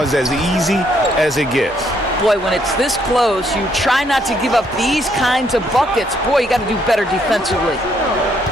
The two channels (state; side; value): normal; both; correlation 0.71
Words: as easy as it gets. Boy, when it's this close, you try not to give up these kinds of buckets. Boy, you got to do better defensively.